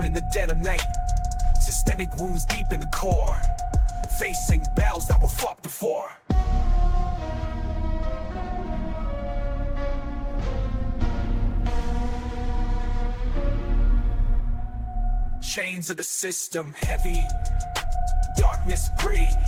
in the dead of night. Systemic wounds deep in the core. Facing battles that were fought before. Chains of the system heavy. Darkness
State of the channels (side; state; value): both; identical; correlation 1.00